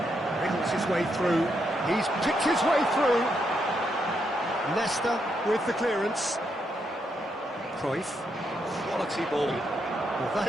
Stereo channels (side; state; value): both; normal; correlation 0.79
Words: Wriggles his way through. He's picked his way through. Leicester with the clearance. Cruyff. Quality ball. Well, that